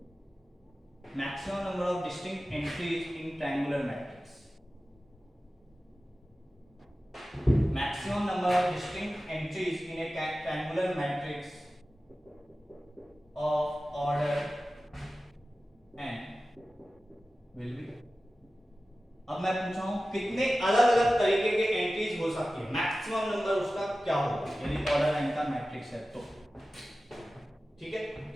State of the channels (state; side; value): normal; both; correlation 0.95